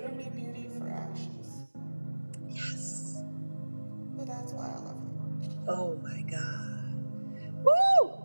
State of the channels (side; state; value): both; inverted; correlation -1.00